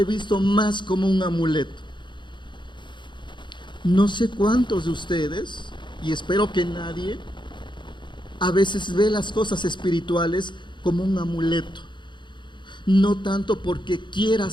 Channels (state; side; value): late; right; 0.23 ms